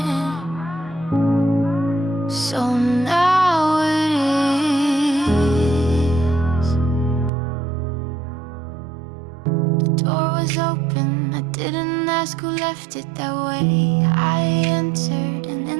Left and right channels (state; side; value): drops out; left; at 7.3 s